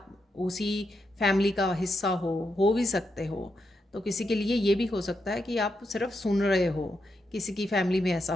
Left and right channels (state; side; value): normal; both; correlation 0.84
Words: उसी फैमिली का हिस्सा हो भी सकते हो। तो किसी के लिए ये भी हो सकता है कि आप सिर्फ सुन रहे हो, किसी की फैमिली में ऐसा